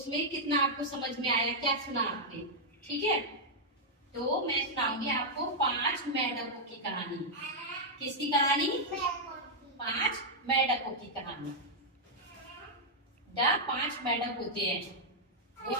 कितना आपको समझ में आया, क्या सुना आपने। ठीक है? तो मैं सुनाऊंगी आपको 5 मेंढकों की कहानी। किसकी कहानी? 5 मेंढकों की कहानी। 5 मेंढक होते हैं, वो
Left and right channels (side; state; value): both; normal; correlation -0.05